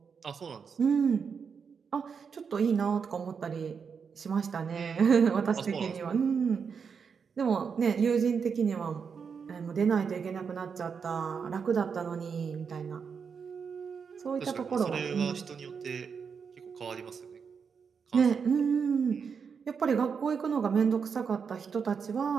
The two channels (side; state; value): left; quieter; 6.2 dB